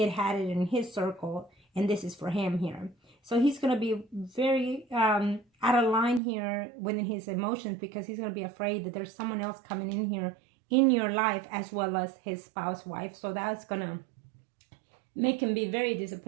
had it in his circle, and this is for him here. So he's going to be very out of line here within his emotions, because he's going to be afraid that there's someone else coming in here in your life as well as his spouse wife. So that's going to make him be very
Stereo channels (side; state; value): left; drops out; at 6.2 s